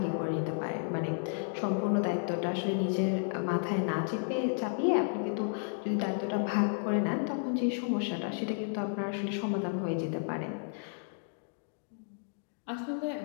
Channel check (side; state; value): right; silent; digital silence